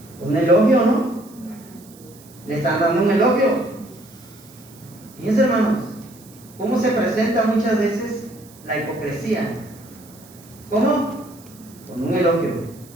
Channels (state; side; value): noise; right; hiss, 23 dB below the sound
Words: Un elogio, ¿no? Le están dando un elogio. Fíjense, hermanos, cómo se presenta muchas veces la hipocresía. ¿Cómo? Con un elogio.